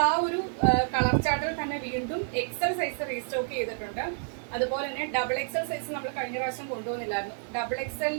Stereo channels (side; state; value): left; silent; digital silence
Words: ആ ഒരു കളർ ചാർട്ടിൽ തന്നെ വീണ്ടും എക്സൽ സൈസ് റീസ്റ്റോക്ക് ചെയ്തിട്ടുണ്ട്. അതുപോലെ തന്നെ ഡബിൾ എക്സൽ സൈസ് നമ്മൾ കഴിഞ്ഞ പ്രാവശ്യം കൊണ്ടുവന്നില്ലായിരുന്നു. ഡബിൾ